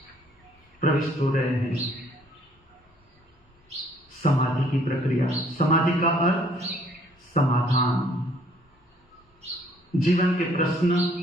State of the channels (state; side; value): normal; both; correlation 0.61